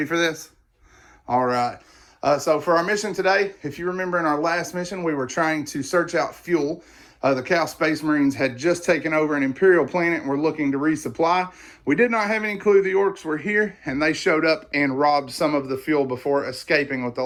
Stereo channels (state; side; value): identical; both; correlation 1.00